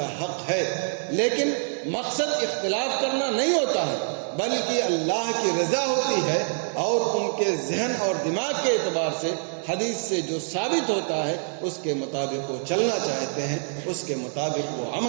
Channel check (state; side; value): silent; left; 61 dB below the other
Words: حق ہے، لیکن مقصد اختلاف کرنا نہیں ہوتا ہے بلکہ اللہ کی رضا ہوتی ہے، اور ان کے ذہن اور دماغ کے اعتبار سے حدیث سے جو ثابت ہوتا ہے اس کے مطابق وہ چلنا چاہتے ہیں، اس کے مطابق وہ